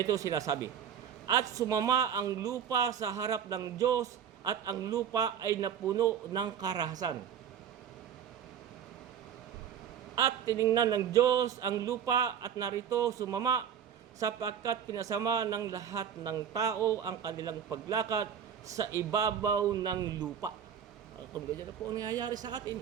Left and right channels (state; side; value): quieter; left; 8.4 dB